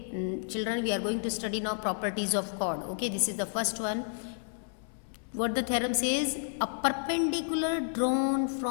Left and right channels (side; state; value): right; silent; 57 dB below the other